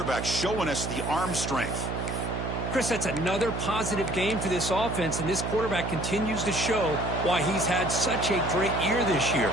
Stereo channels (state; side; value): noise; right; hum, 4 dB below the sound